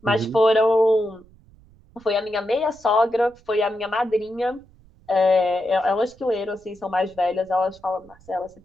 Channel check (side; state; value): right; noise; rumble, 27 dB below the sound